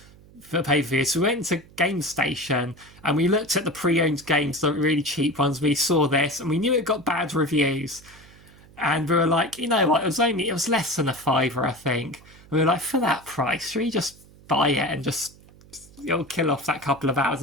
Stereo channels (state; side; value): noise; right; hum, 24 dB below the sound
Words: for pay-per-view? So we went to Game Station and we looked at the pre-owned games, the really cheap ones. We saw this and we knew it got bad reviews. And we were like, you know what, it was less than a £5, I think. And we were like, for that price, should we just buy it and just kill off that couple of hours?